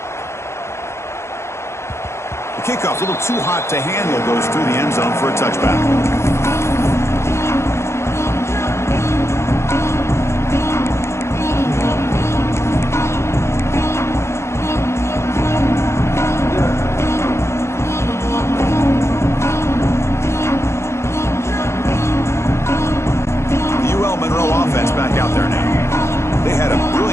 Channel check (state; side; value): late; right; 0.13 ms